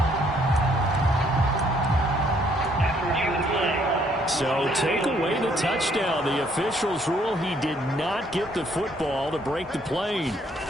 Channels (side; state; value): both; normal; correlation 0.67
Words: So take away the touchdown. The officials rule he did not get the football to break the plane.